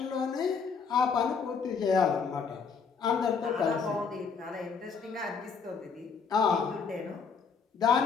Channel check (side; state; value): right; quieter; 5.6 dB